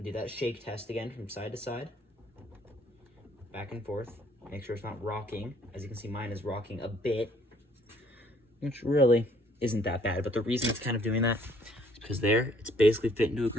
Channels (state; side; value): normal; both; correlation 0.63